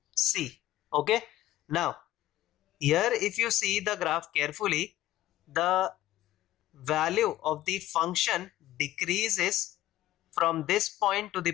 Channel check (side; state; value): right; quieter; 14.8 dB